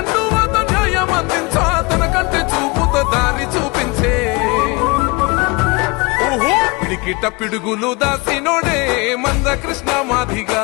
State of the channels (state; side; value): quieter; right; 26.9 dB